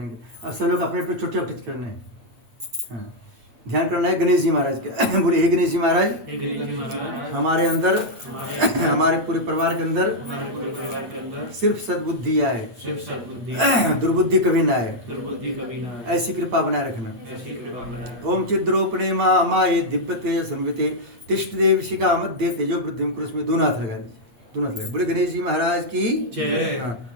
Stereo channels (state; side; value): late; left; 8.9 ms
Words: अब सब लोग अपने अपने छोटे छोटे करने हैं। हाँ, ध्यान करना है गणेश जी महाराज के। बोले हे गणेश जी महाराज, हमारे अंदर, हमारे पूरे परिवार के अंदर हमारे पूरे परिवार के अंदर सिर्फ सद्बुद्धि आए, सिर्फ सद्बुद्धि, दुर्बुद्धि कभी ना आए। दुर्बुद्धि कभी ना आए। ऐसी कृपा बनाए रखना। ऐसी कृपा बनाए। ओम चिद्रोपणे माये दिव्यते संविते तिष्ठ देव शिखा मध्य तेजो वृद्धि कुरुष में दोनों हाथ लगा दीजिए, दोनों हाथ लगे। बोले गणेश जी महाराज की जय। हाँ,